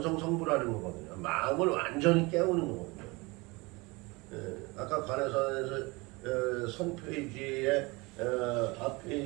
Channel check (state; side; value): quieter; left; 25.1 dB